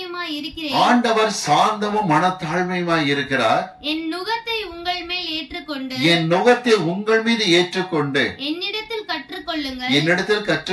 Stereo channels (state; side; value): identical; both; correlation 1.00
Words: இருக்கிறேன். ஆண்டவர் சாந்தமும் மனத்தாழ்மையுமாய் இருக்கிறார். என் நுகத்தை உங்கள் மேல் ஏற்றுக்கொண்டு, என் நுகத்தை உங்கள் மீது ஏற்றுக்கொண்டு என்னிடத்தில் கற்றுக்கொள்ளுங்கள். என்னிடத்தில்